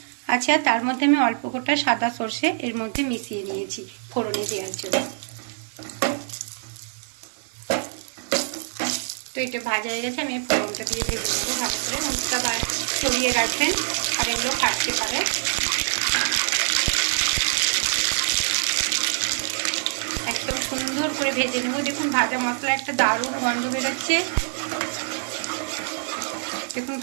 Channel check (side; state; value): left; silent; 57 dB below the other